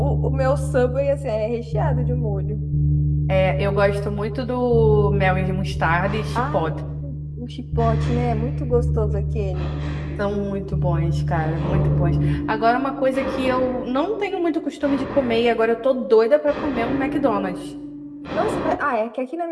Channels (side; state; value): both; identical; correlation 1.00